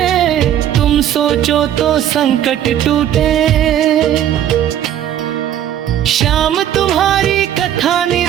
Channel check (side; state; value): left; quieter; 10.9 dB